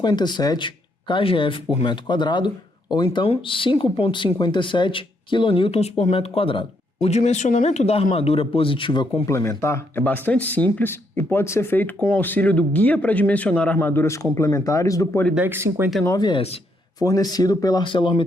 kgf por metro quadrado, ou então 5,57 kN por metro quadrado. O dimensionamento da armadura positiva complementar é bastante simples e pode ser feito com o auxílio do Guia para Dimensionar Armaduras Complementares do Polydeck 59S, fornecido pela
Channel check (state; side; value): normal; both; correlation 0.75